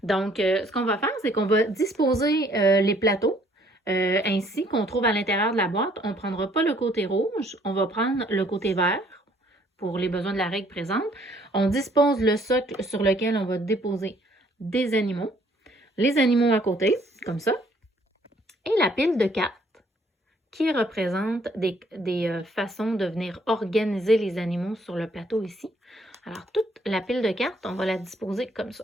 Donc, ce qu'on va faire, c'est qu'on va disposer les plateaux ainsi qu'on trouve à l'intérieur de la boîte. On ne prendra pas le côté rouge, on va prendre le côté vert pour les besoins de la règle présente. On dispose le socle sur lequel on va déposer des animaux, les animaux à côté, comme ça, et la pile de cartes qui représente des façons de venir organiser les animaux sur le plateau ici. Alors, toute la pile de cartes, on va la disposer comme ça.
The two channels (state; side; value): normal; both; correlation 0.63